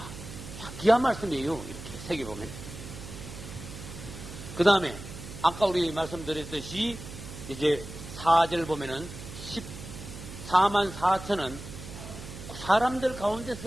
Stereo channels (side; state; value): right; noise; hum, 12 dB below the sound